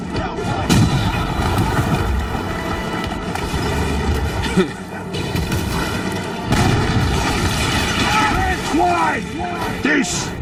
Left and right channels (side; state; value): both; identical; correlation 1.00